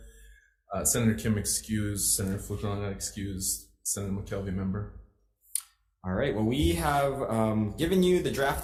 Senator Kim excused, Senator Fukunaga excused, Senator McKelvey member. All right, well, we have given you the draft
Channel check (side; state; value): both; identical; correlation 1.00